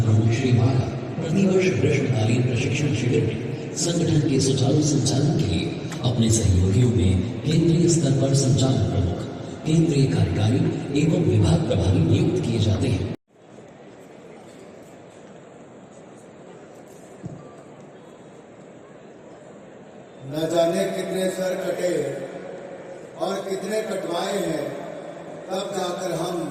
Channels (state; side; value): identical; both; correlation 1.00